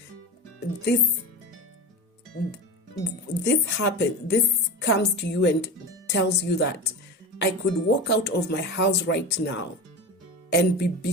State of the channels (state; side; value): normal; both; correlation 0.27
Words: happened. This comes to you and tells you that I could walk out of my house right now and be